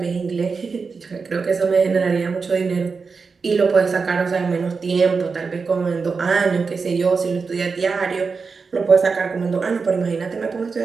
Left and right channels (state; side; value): quieter; left; 4.9 dB